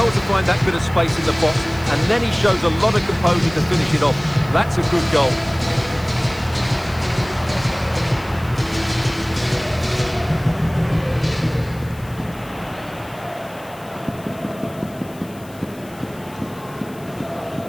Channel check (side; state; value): left; noise; hiss, 23 dB below the sound